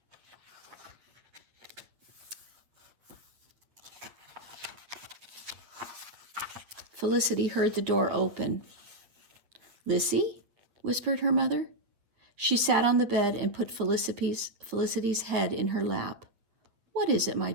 Felicity heard the door open. Lissy? Whispered her mother. She sat on the bed and put Felicity's head in her lap. What is it, my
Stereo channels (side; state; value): left; late; 8.8 ms